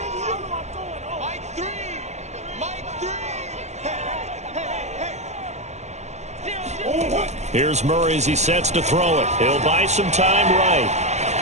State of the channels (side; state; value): left; late; 0.33 ms